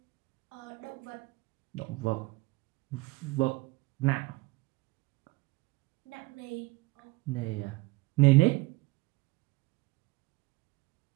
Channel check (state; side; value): quieter; left; 22.9 dB